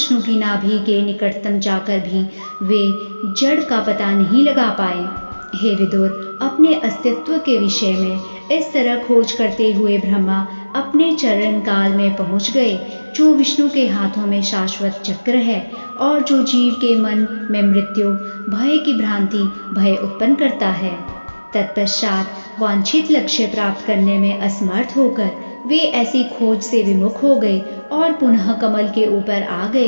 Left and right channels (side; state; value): both; inverted; correlation -1.00